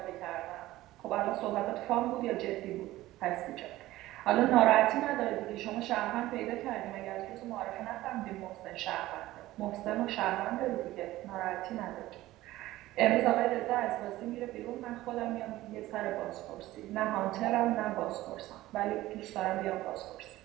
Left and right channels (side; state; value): left; quieter; 16.5 dB